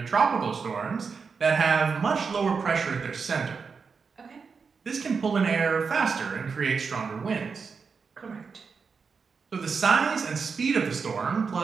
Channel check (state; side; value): quieter; left; 5.4 dB